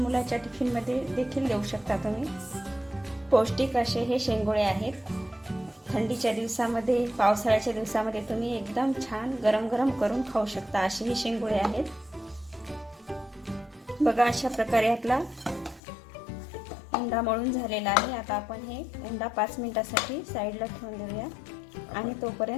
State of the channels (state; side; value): drops out; right; at 15.8 s